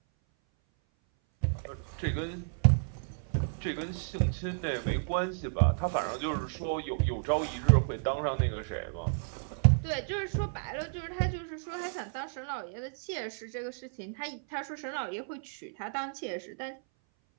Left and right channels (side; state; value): left; silent; 56 dB below the other